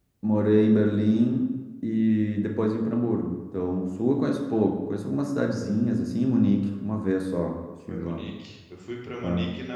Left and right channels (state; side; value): identical; both; correlation 1.00